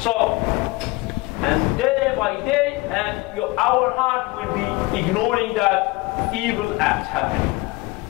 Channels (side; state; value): right; quieter; 22.3 dB